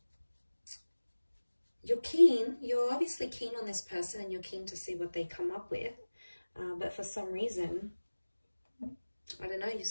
You're keen. You're obviously keen on this person and you're keen to see what they come up with. But for some reason, I don't know, you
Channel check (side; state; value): both; inverted; correlation -1.00